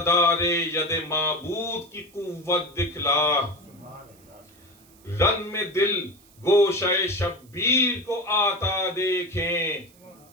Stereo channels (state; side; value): noise; right; hiss, 28 dB below the sound